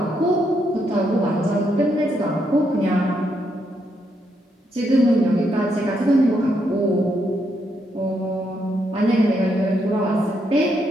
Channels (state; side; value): normal; both; correlation 0.78